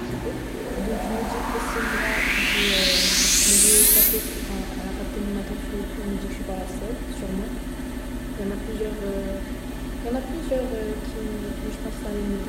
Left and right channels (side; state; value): both; identical; correlation 1.00